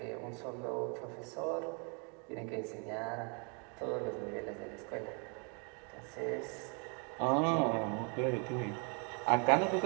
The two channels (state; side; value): quieter; left; 36.9 dB